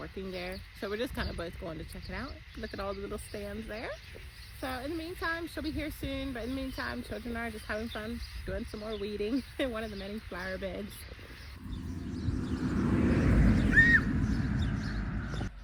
there. So we're just kind of both going to check it out. Look at all the little stands there. So in the meantime, she'll be here soon. But in the meantime, children are just having fun doing some more weeding in one of the many flower beds.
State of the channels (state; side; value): identical; both; correlation 1.00